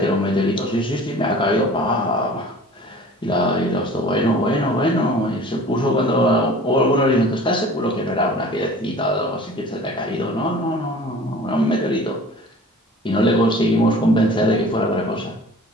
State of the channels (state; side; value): normal; both; correlation 0.44